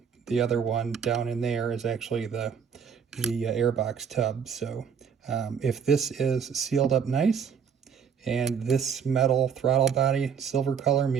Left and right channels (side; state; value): left; quieter; 7.1 dB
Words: the other one down in there is actually the Airbox tub. So if this is sealed up nice and this metal throttle body silver color